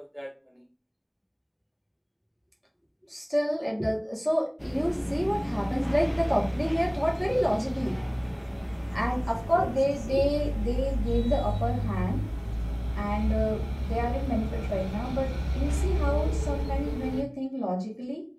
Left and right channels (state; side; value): identical; both; correlation 1.00